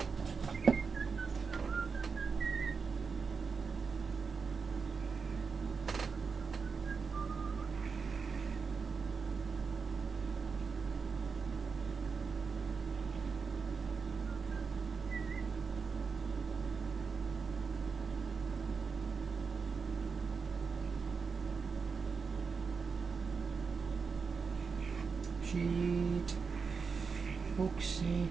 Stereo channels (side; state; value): left; quieter; 5.2 dB